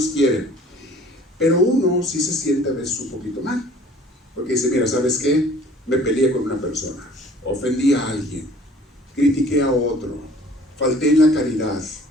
quiere. Pero uno sí se siente a veces un poquito mal. Porque dice, mira, ¿sabes qué? Me peleé con una persona. Ofendí a alguien. Critiqué a otro. Falté en la caridad.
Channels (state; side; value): normal; both; correlation 0.51